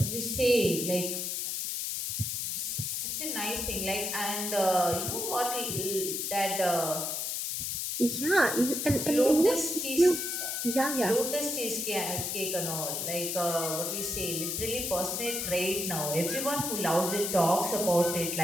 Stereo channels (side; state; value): left; noise; hiss, 2 dB below the sound